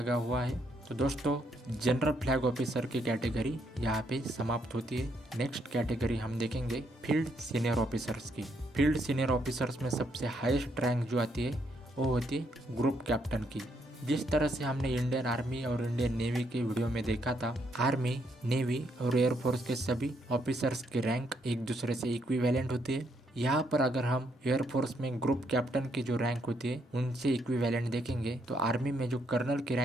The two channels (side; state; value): both; normal; correlation 0.74